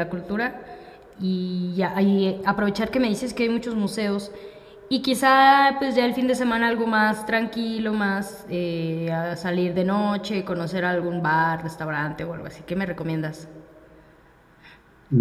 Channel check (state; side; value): identical; both; correlation 1.00